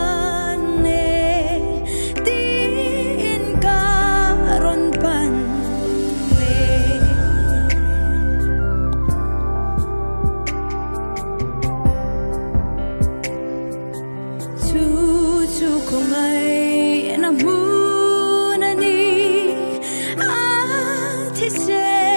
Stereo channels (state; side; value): inverted; both; correlation -1.00